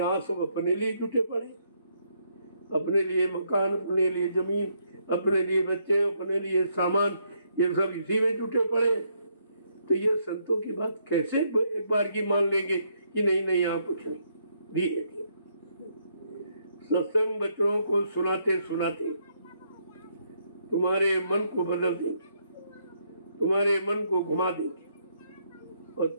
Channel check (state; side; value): inverted; both; correlation -0.73